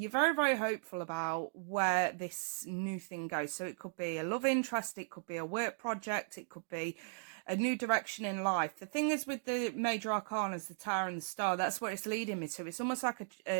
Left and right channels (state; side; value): silent; left; digital silence